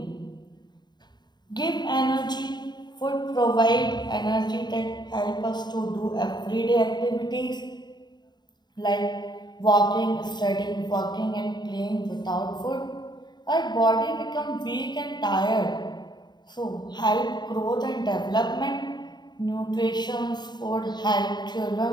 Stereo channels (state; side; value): late; right; 0.21 ms